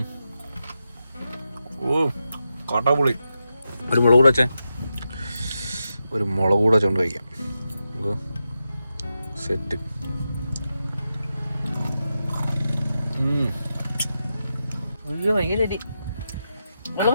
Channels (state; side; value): inverted; both; correlation -0.89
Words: ഓ കാട്ടാപുളി. ഒരു മുളക് കൂടെ വെച്ചേ. ഒരു മുളക് കൂടെ വെച്ചോണ്ട് കഴിക്കാം. സെറ്റ്.